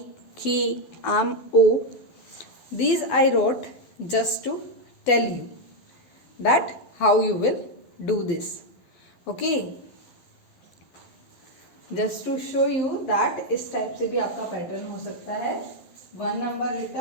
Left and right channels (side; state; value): right; late; 12 ms